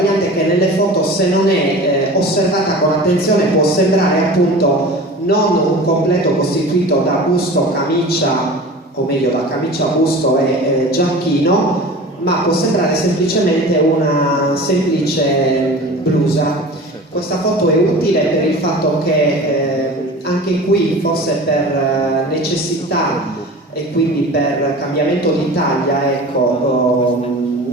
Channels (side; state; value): both; normal; correlation 0.37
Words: che nelle foto, se non è osservata con attenzione, può sembrare appunto non un completo costituito da busto, camicia, o meglio da camicia, busto e giacchino, ma può sembrare semplicemente una semplice blusa. Questa foto è utile per il fatto che anche qui, forse per necessità e quindi per cambiamento di taglia, ecco,